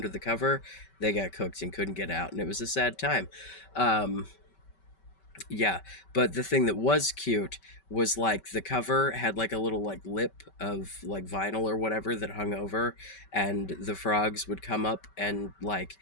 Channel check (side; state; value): right; late; 5.2 ms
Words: the cover, they got cooked and couldn't get out, and it was a sad time. Um, yeah, but the thing that was cute was like the cover had like a little like lip of like vinyl or whatever that hung over, and the frogs would come up and like